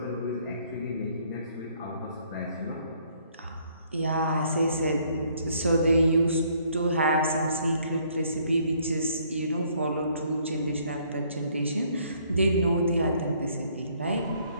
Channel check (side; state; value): both; inverted; correlation -0.65